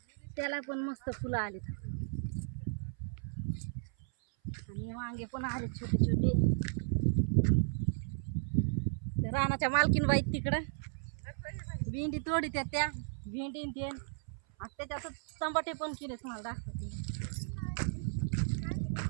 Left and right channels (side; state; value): left; silent; 54 dB below the other